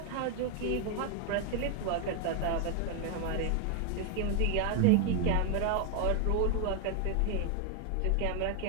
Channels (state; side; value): different; both; correlation 0.01